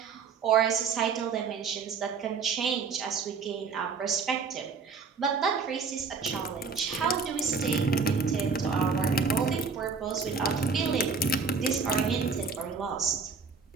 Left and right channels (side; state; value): left; quieter; 5.0 dB